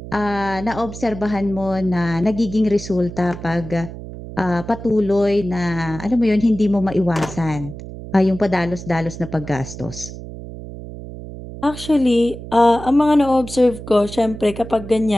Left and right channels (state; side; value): noise; right; hum, 12 dB below the sound